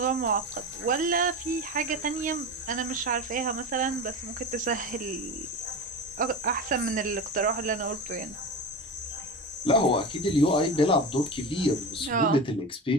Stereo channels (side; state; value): both; normal; correlation 0.26